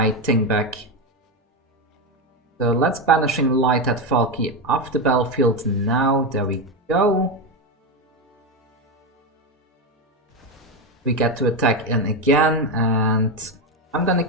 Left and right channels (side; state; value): both; normal; correlation 0.12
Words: thing back. So let's Banishing Light that Valky off the battlefield now. There we go. We get to attack in again, and I'm gonna